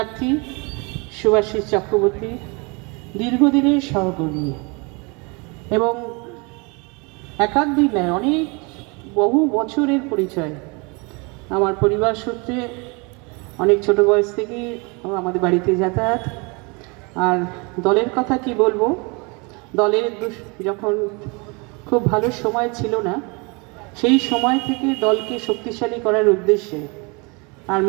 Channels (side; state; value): left; quieter; 30.0 dB